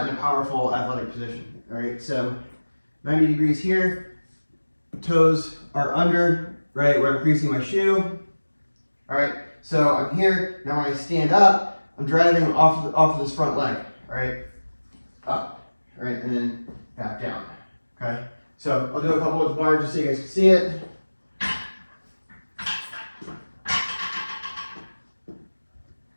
in a powerful athletic position, all right? So 90 degrees here, toes are under, right, where I'm creasing my shoe, all right? So I'm here, now when I stand up, I'm driving off of this front leg, all right? Up, all right, and then back down, okay? So I'll do a couple with the bar just so you guys can see it.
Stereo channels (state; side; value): inverted; both; correlation -1.00